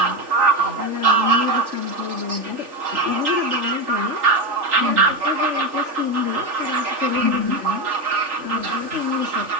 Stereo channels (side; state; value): left; late; 3.4 ms